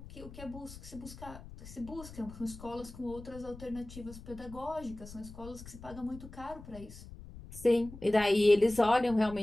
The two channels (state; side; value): noise; left; rumble, 15 dB below the sound